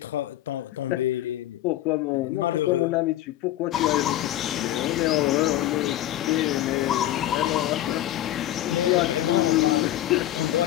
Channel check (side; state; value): right; quieter; 13.6 dB